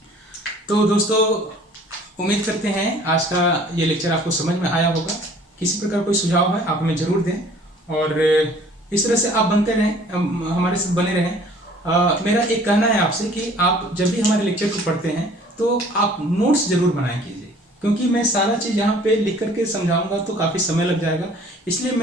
तो दोस्तों उम्मीद करते हैं आज का ये लेक्चर आपको समझ में आया होगा। किसी प्रकार कोई सुझाव है आप हमें जरूर दें और इस तरह से आप बनते रहें, हमारे साथ बने रहें। मेरा एक कहना है आपसे कि आप जब भी हमारे लेक्चर को पढ़ते हैं तो आप नोट्स जरूर बनाए कीजिए, क्योंकि मैं सारा चीज़ यहाँ पे लिख करके समझाऊंगा तो काफ़ी समय लग जाएगा। इसलिए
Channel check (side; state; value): both; normal; correlation 0.53